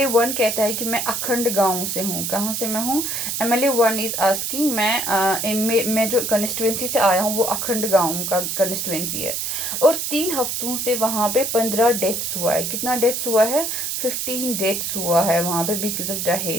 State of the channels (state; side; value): noise; right; hiss, 2 dB below the sound